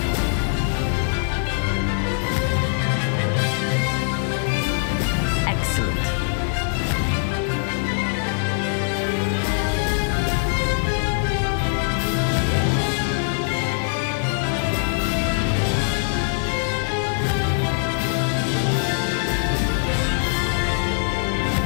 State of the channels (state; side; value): silent; right; 64 dB below the other